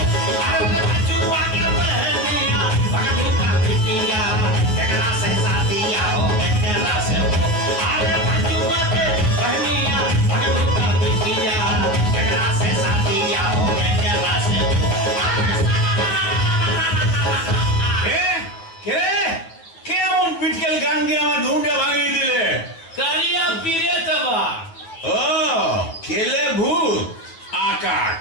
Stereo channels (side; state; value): right; late; 9.1 ms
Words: গান গিয়ে আমার ঘুমটা ভাঙিয়ে দিলে কারিয়া পীরে তবা ও কেলে ভূত আকাট